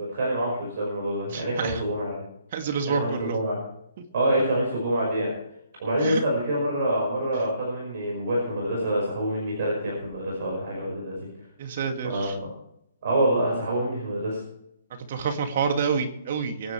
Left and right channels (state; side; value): inverted; both; correlation -0.68